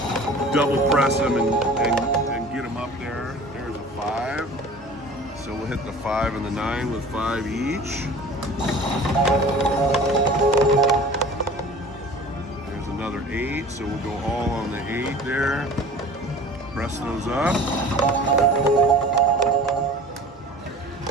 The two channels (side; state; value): both; normal; correlation 0.43